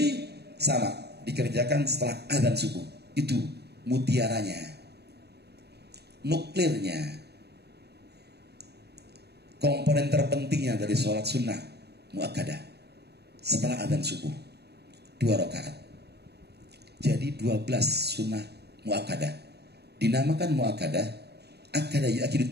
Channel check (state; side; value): late; left; 0.48 ms